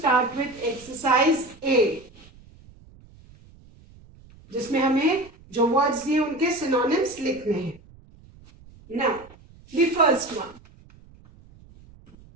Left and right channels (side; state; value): right; noise; rumble, 24 dB below the sound